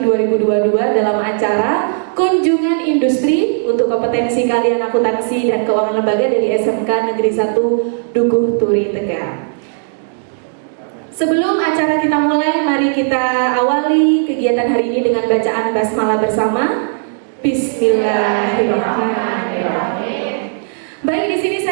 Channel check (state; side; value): silent; left; digital silence